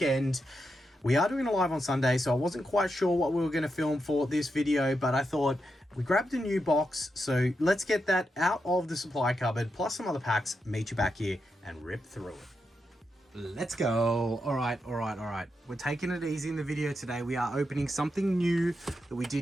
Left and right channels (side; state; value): both; normal; correlation 0.85